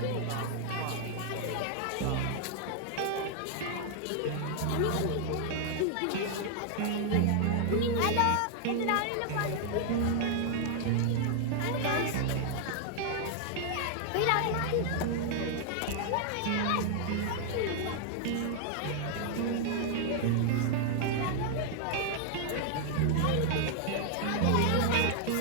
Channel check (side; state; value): both; different; correlation 0.00